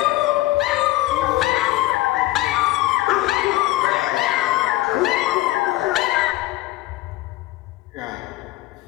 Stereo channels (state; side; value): quieter; right; 17.1 dB